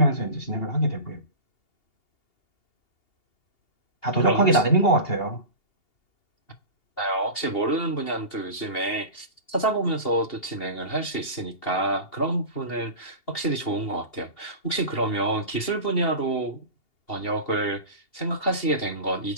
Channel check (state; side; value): late; right; 2.8 ms